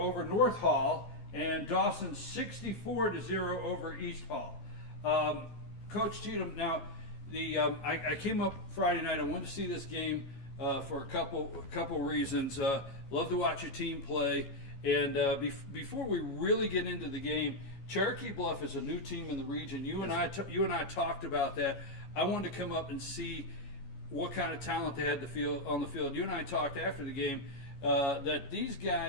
North Hall, and Dawson 64-0 over East Hall. Coach Cheatham, now I came up Friday night. I wanted to see this game for a couple reasons. Love to watch your team play, and before we really get into the game, Cherokee Bluff is a new team in the region. You and I talked about that. I wanted to come up and see what kind of talent they had on the field. You and I talked after the game that these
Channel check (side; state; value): right; late; 14 ms